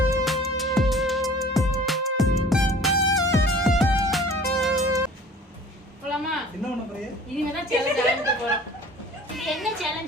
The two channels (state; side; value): normal; both; correlation 0.47